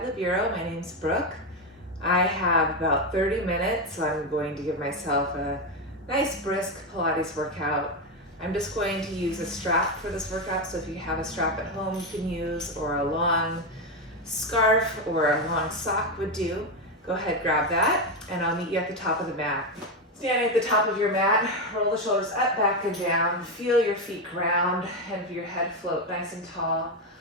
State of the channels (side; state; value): both; normal; correlation 0.10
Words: the Bureau. My name's Brooke. I have about 30 minutes, so I'm going to give myself a nice brisk Pilates workout. I'm just going to use a strap for this workout, so if you have a strap at home you can use, or a long scarf or a long sock would do. Go ahead, grab that, and I'll meet you at the top of the mat. Standing at the top of your mat, roll the shoulders up, back, and down. Feel your feet ground and your head float nice and tall.